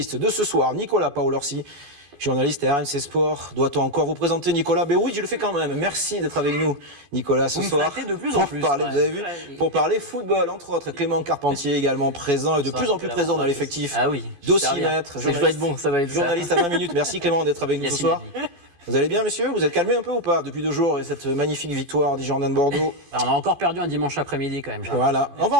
de ce soir, Nicolas Paolorsi, journaliste à RMC Sport. Doit-on encore vous présenter Nicolas? Ben oui, je le fais quand même. Merci d'être avec nous, Nicolas, ce soir. De plus en plus. Parler, vous avez vu, pour parler football, entre autres. Clément Carpentier également présent et de plus en plus présent dans l'effectif. Ah oui. D'Aussi Maître. Je vais être bon, ça va être journaliste à 20 minutes. Merci Clément d'être avec nous ce soir. Vous allez bien, messieurs? Vous êtes calmés un peu ou pas depuis 2 jours et cette magnifique victoire des Girondins de Bordeaux? On a encore perdu un dimanche après-midi quand même. Voilà, on va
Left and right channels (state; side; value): late; left; 14 ms